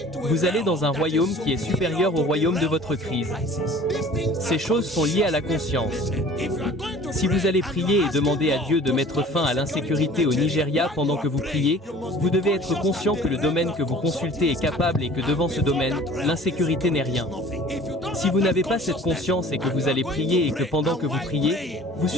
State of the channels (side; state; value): both; normal; correlation 0.47